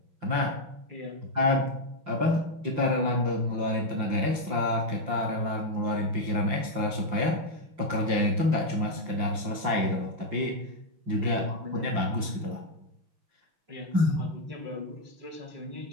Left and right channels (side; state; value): left; late; 5.8 ms